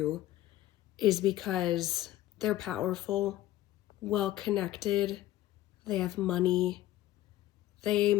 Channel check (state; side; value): quieter; right; 15.1 dB